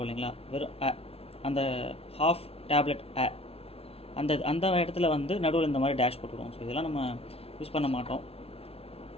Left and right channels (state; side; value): late; right; 0.28 ms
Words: இல்லைங்களா, வெறும் அந்த ஹாஃப் டேப்லெட் அந்த இடத்துல வந்து நடுவில் இந்த மாதிரி டேஷ் போட்டுருவோம். ஸோ இதெல்லாம் நம்ம யூஸ் பண்ண மாட்டோம்.